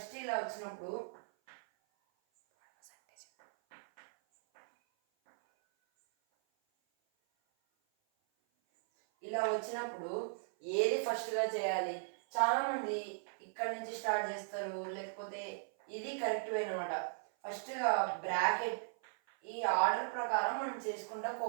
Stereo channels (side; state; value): left; silent; 53 dB below the other